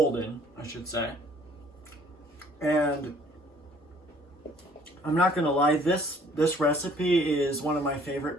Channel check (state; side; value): normal; both; correlation 0.58